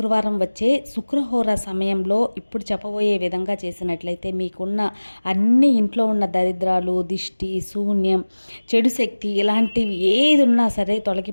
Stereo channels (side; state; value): both; inverted; correlation -1.00